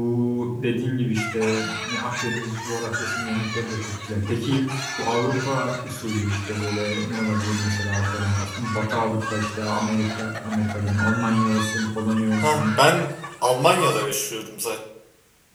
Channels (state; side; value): identical; both; correlation 1.00